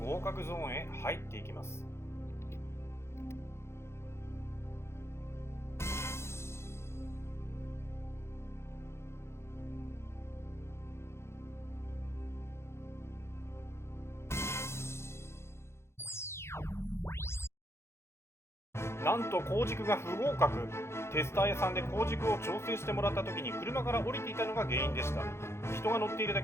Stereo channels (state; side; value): late; right; 0.13 ms